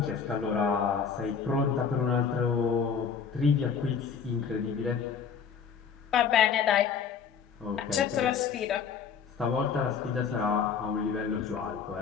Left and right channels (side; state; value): right; quieter; 6.5 dB